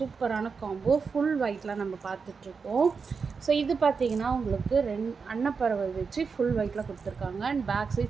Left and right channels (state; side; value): quieter; left; 5.3 dB